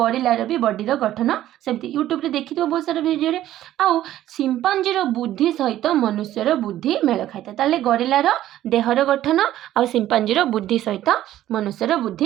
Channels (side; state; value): left; quieter; 13.2 dB